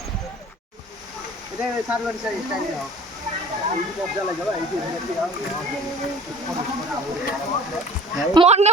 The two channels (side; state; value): both; normal; correlation 0.46